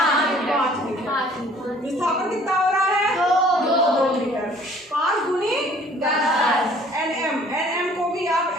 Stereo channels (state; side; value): normal; both; correlation 0.55